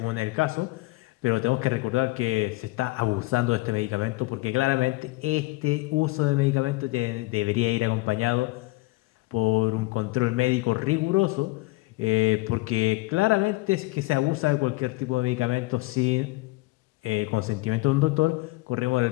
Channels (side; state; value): right; quieter; 21.5 dB